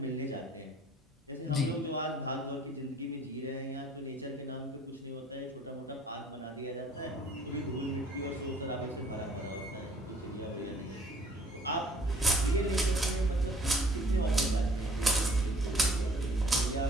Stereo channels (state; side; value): normal; both; correlation 0.56